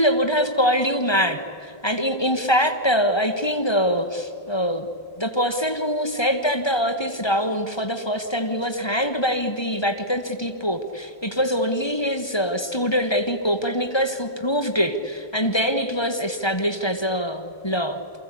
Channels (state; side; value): late; right; 1.3 ms